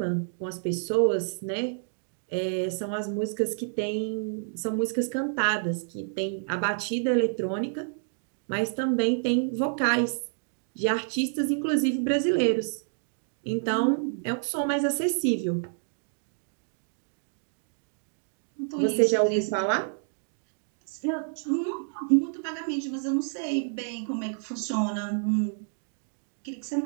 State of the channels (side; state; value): left; silent; digital silence